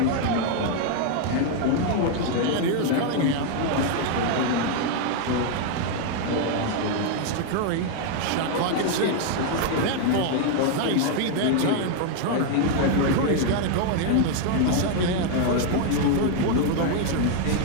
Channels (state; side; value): different; both; correlation 0.00